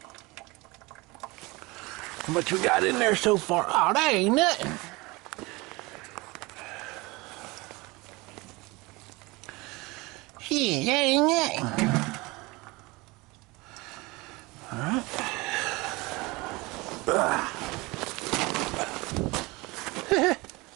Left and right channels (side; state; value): left; quieter; 23.6 dB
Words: How much we got in there so far? Oh, that ain't nothing. Shit, that ain't nothing. Alright.